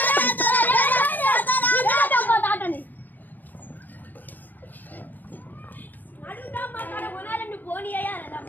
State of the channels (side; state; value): right; late; 0.086 ms